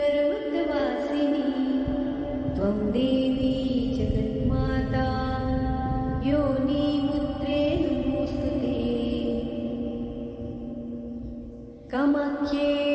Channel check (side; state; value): both; identical; correlation 1.00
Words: त्वं देवी जगन्माता योनिमुद्रे नमोऽस्तु